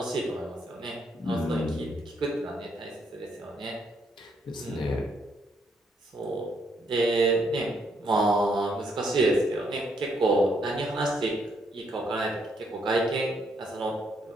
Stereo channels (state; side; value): normal; both; correlation 0.73